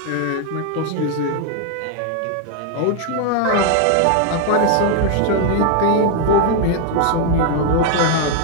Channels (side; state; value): both; different; correlation 0.00